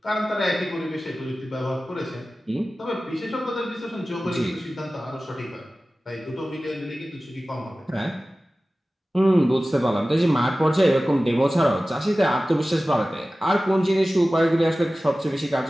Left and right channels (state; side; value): normal; both; correlation 0.96